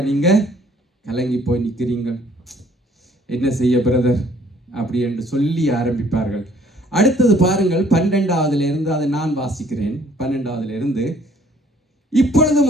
நீங்கள் கலங்கி போய் நிற்கிறீங்க. என்ன செய்ய பிரதர் அப்படி என்று சொல்லி ஆரம்பிப்பார்கள். அடுத்தது பாருங்கள், 12வது இருந்து, அதை நான் வாசிக்கிறேன். 12வது இருந்து,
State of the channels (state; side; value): normal; both; correlation 0.59